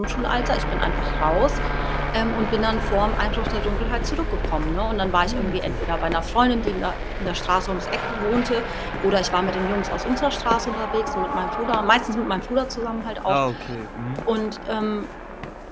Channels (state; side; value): identical; both; correlation 1.00